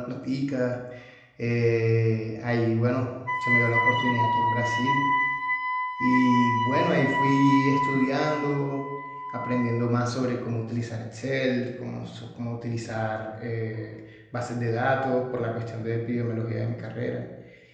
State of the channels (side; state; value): both; identical; correlation 1.00